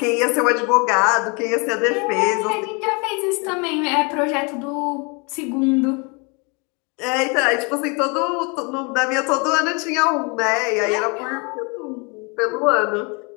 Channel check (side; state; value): right; quieter; 31.6 dB